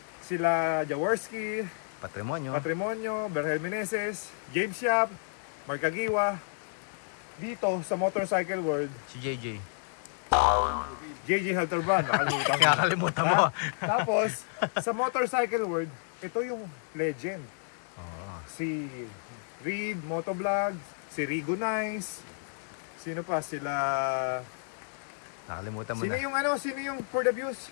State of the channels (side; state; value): right; silent; digital silence